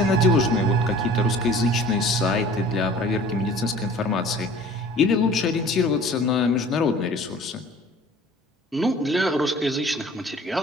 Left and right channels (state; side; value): normal; both; correlation 0.47